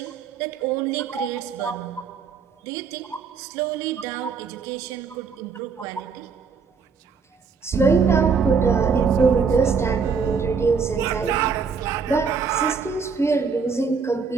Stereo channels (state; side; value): quieter; left; 5.6 dB